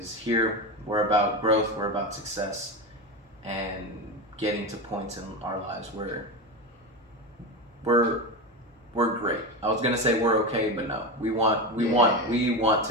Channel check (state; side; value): normal; both; correlation 0.19